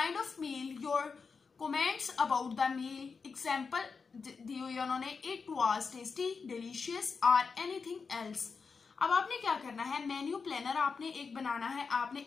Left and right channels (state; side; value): quieter; right; 5.1 dB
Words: of meal, your comments about the meal, example दी हुई उन्होंने, इट वॉज टेस्टी, डिलीशियस और एनीथिंग एल्स। अब आपने क्या करना है, मेन्यू प्लानर आपने एक बनाना है। आपने